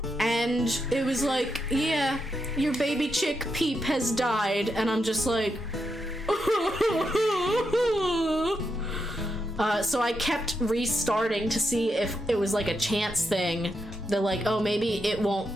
and it was like, yeah, your baby chick Peep has died, and I'm just like, so I kept restarting to see if it was like a chance thing. They're like, oh, maybe it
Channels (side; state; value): both; normal; correlation 0.84